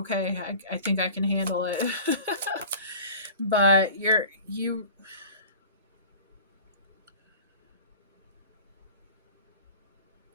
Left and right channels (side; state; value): both; inverted; correlation -0.41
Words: I think I can handle it. But you